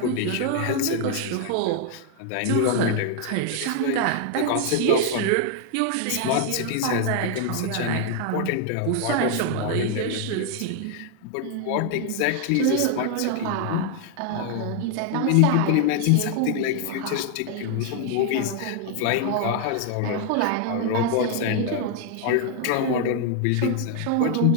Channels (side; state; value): both; different; correlation 0.00